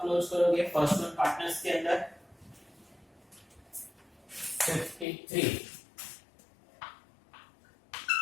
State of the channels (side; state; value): right; drops out; at 5.1 s